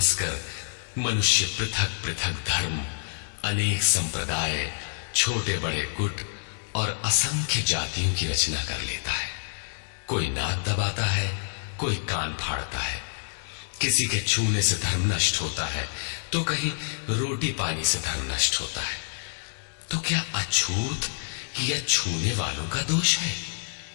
मनुष्य पृथक पृथक धर्म, अनेक संप्रदाय, छोटे बड़े गुट और असंख्य जातियों की रचना कर लेता है। कोई नाक दबाता है, कोई कान फाड़ता है, किसी के छूने से धर्म नष्ट होता है, तो कहीं रोटी पानी से धर्म नष्ट होता है। तो क्या अछूत या छूने वालों का दोष है?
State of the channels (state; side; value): silent; right; digital silence